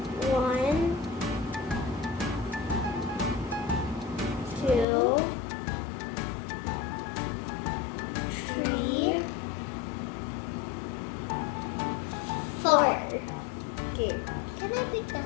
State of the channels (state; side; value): drops out; right; at 4.9 s